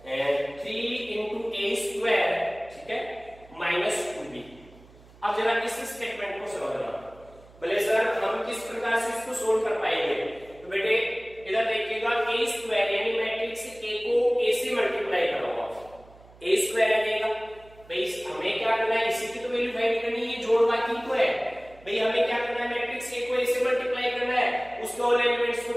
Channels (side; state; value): right; noise; hum, 24 dB below the sound